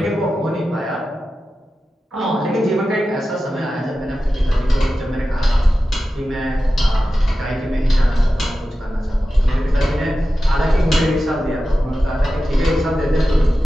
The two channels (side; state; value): both; normal; correlation 0.93